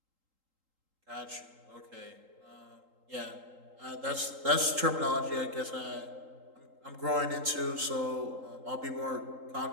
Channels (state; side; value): late; left; 3.8 ms